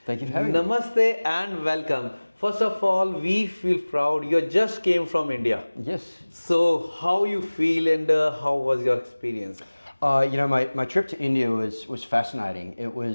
Thank you for having me. Namaste and welcome. First of all, we feel proud. You just came from India. Yes. So, how you feel and how was your experience? My trip to India was fascinating. It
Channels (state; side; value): inverted; both; correlation -1.00